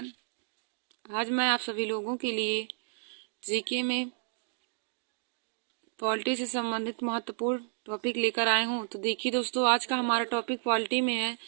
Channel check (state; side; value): silent; left; digital silence